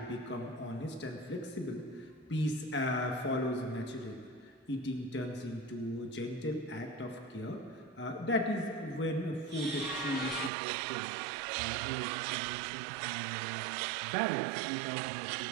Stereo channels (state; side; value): drops out; left; at 10.5 s